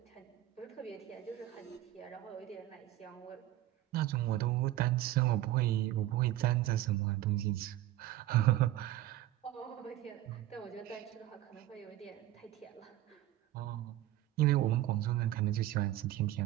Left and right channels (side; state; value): left; quieter; 14.4 dB